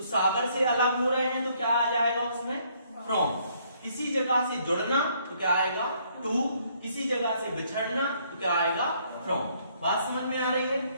सागर से अलग हो रहे हैं तो क्या आ जाएगा उसमें? फ्रॉम. किसी जगह से जुड़ना तो क्या आएगा? टू. किसी जगह से बिछड़ना तो क्या आएगा? फ्रॉम. बात समझ में आ रही है?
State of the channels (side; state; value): both; inverted; correlation -0.67